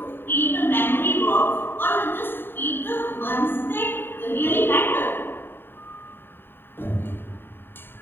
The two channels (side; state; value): right; late; 0.10 ms